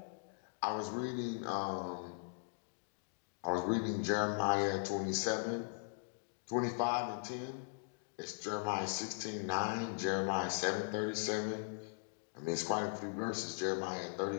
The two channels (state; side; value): silent; right; digital silence